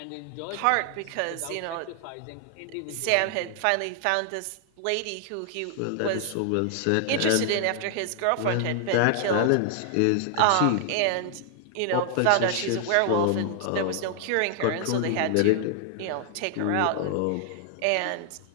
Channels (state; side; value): different; both; correlation 0.00